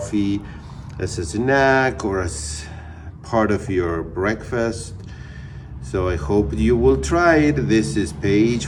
as a snack or as part of your breakfast. So I hope you will try it. This is page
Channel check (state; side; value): identical; both; correlation 1.00